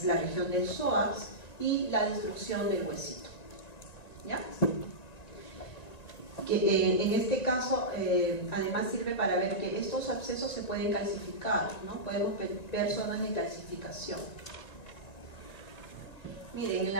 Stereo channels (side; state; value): right; late; 1.9 ms